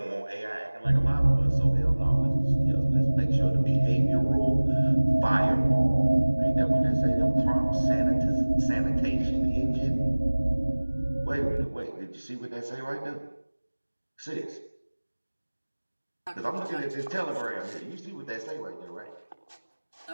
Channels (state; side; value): inverted; both; correlation -1.00